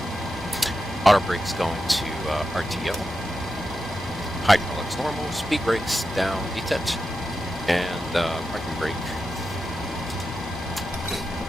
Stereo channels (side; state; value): both; normal; correlation 0.89